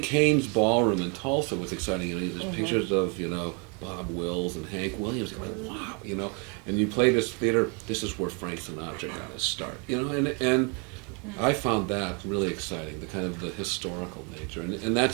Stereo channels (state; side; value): quieter; left; 34.7 dB